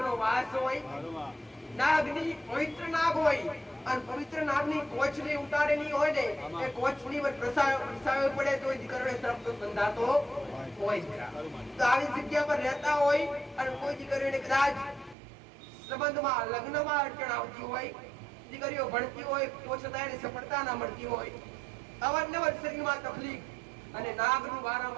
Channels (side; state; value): left; drops out; at 15.2 s